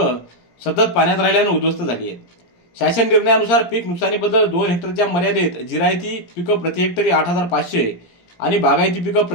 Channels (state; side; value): late; right; 17 ms